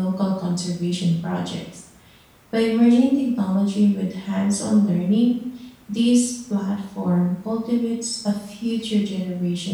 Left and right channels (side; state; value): both; identical; correlation 1.00